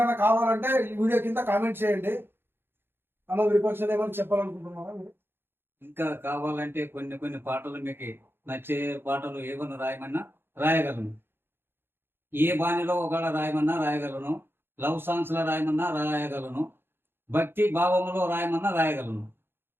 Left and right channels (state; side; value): late; left; 0.10 ms